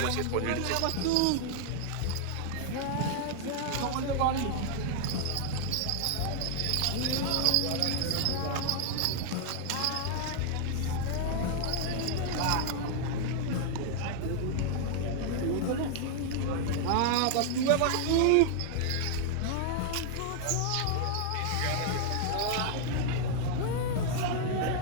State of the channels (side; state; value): both; different; correlation 0.00